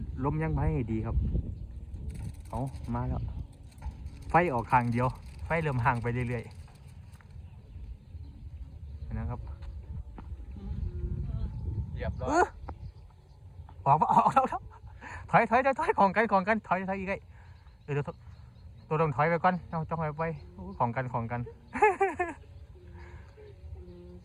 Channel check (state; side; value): identical; both; correlation 1.00